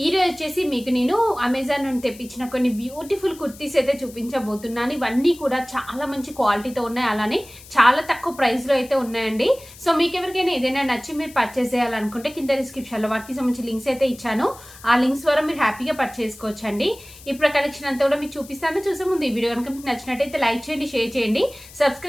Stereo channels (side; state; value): left; noise; hiss, 20 dB below the sound